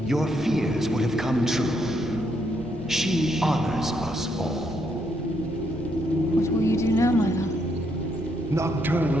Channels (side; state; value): both; normal; correlation 0.75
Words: your fears would have come true. She honors us all. What will you do now, my love?